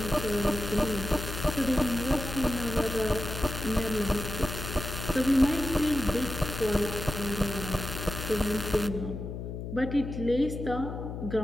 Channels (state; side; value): noise; left; hum, 7 dB below the sound